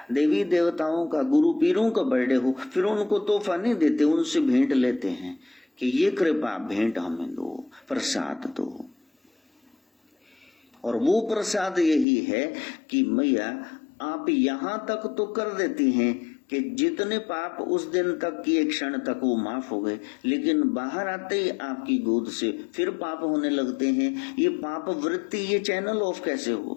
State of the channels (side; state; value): right; drops out; at 12.1 s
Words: देवी देवताओं का, गुरु पीरों का बर्थडे हो, फिर उनको तोहफा नहीं देते, उनसे भेंट लेते हैं कि ये कृपा भेंट हमें दो, प्रसाद दो। और वो प्रसाद यही है कि मैया आप यहां तक तो कर देती हैं कि जितने पाप उस दिन तक किए क्षण तक वो माफ हो गए, लेकिन बाहर आते ही आपकी गोद से फिर पाप होने लगते हैं। ये पाप वृत्ति, ये चैनल ऑफ कैसे